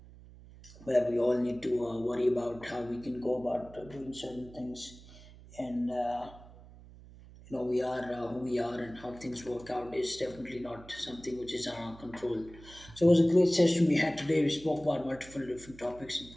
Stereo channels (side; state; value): right; noise; hum, 20 dB below the sound